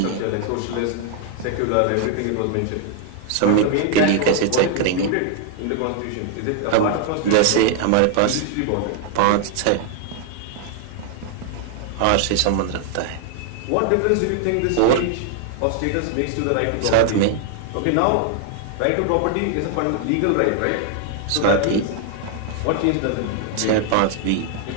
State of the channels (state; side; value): different; both; correlation 0.00